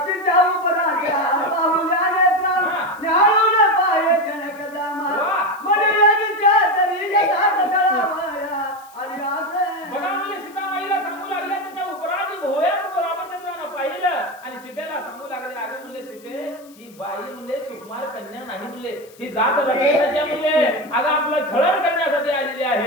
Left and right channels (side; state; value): left; noise; hiss, 25 dB below the sound